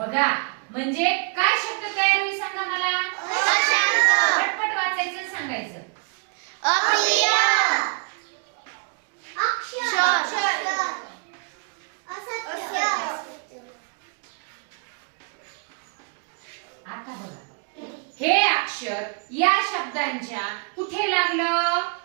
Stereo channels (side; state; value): left; quieter; 37.1 dB